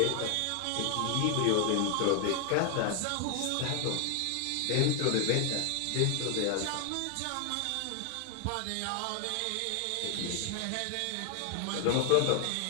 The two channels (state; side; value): different; both; correlation 0.00